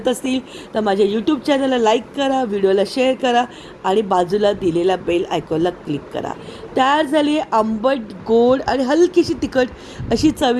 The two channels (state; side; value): identical; both; correlation 1.00